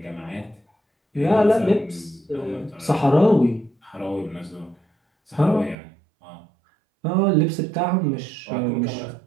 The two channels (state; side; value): drops out; left; at 5.8 s